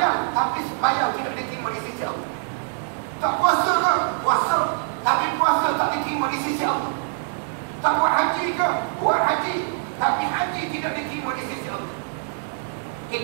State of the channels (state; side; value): silent; left; digital silence